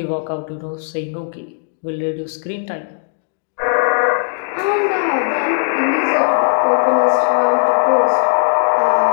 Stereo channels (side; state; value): right; silent; digital silence